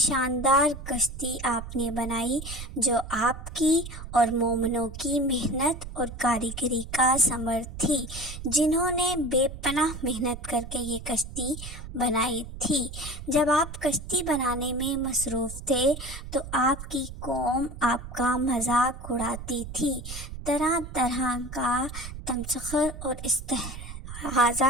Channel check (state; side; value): noise; right; rumble, 11 dB below the sound